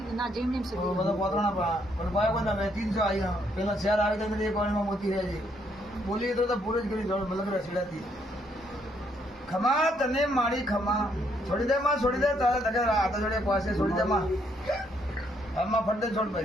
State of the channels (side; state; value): both; normal; correlation 0.72